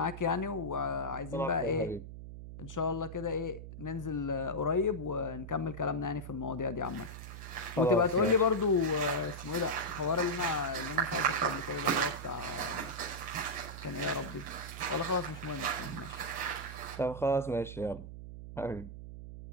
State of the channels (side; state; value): right; noise; hum, 11 dB below the sound